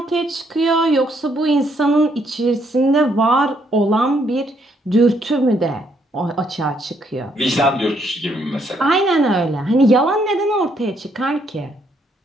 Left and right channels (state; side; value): normal; both; correlation 0.72